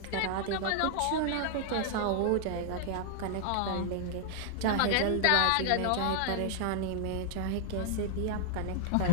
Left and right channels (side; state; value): both; different; correlation -0.01